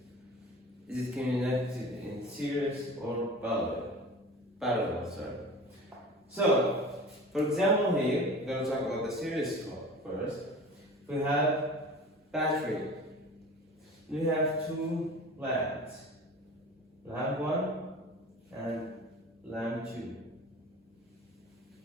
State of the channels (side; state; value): both; normal; correlation 0.38